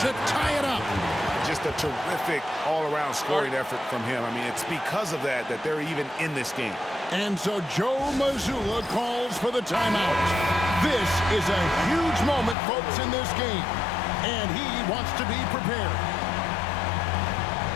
to tie it up. Just a terrific all-around scoring effort from him. I mean, it's because of that they're even in this game. And so Joe Mazzulla calls for the timeout. This is a huge moment, folks, in this game. And he wants to be prepared.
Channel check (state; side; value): drops out; right; at 12.6 s